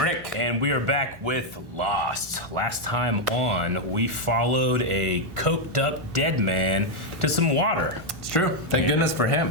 And we are back with Lost. Last time on, we followed a coked up dead man to some water. It's true. Thank goodness for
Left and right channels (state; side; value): normal; both; correlation 0.01